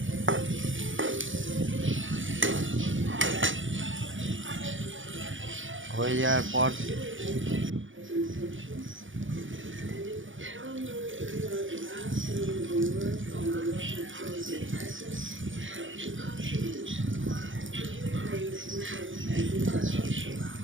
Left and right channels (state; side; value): late; left; 0.57 ms